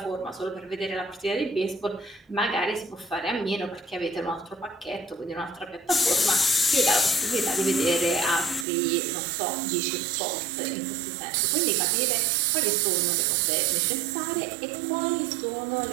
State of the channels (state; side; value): drops out; left; at 8.7 s